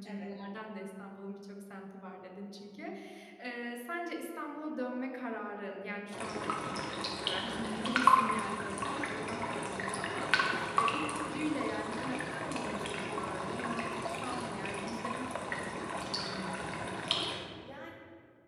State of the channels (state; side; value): identical; both; correlation 1.00